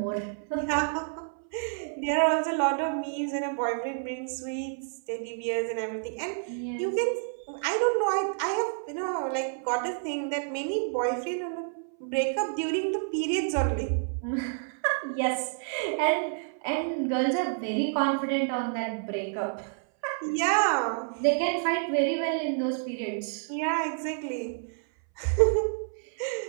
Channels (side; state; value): left; silent; 59 dB below the other